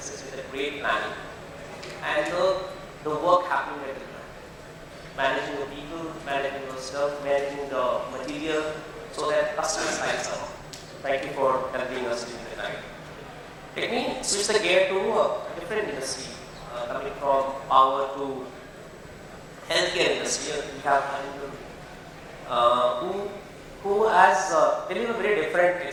with a great planning? And the work happened with it. Managing the people, managing the stuff, managing the material, so that customers' lives are on. Thank you for helping us during the night. Let me switch the gear to a different industry, coming from power to healthcare industry. We have Arindam, who has very different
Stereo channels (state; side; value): identical; both; correlation 1.00